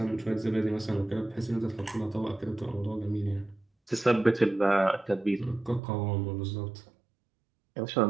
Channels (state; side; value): drops out; left; at 5.8 s